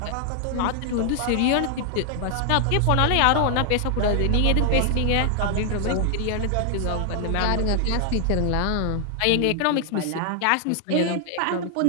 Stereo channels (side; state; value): both; different; correlation 0.00